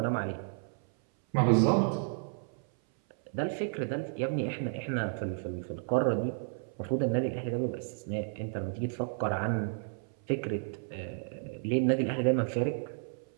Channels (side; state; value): left; silent; 56 dB below the other